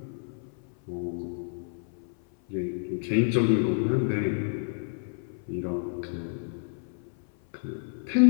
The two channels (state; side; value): silent; right; 56 dB below the other